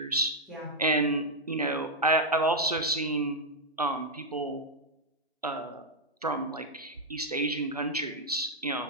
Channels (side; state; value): both; normal; correlation -0.01